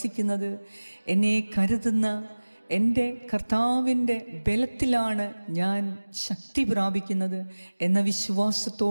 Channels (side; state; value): both; inverted; correlation -1.00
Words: എന്നെ കരുതുന്ന എൻ്റെ കർത്താവിൻ്റെ ബലത്തിലാണ് ഞാൻ ശക്തി പ്രാപിക്കുന്നത് എന്ന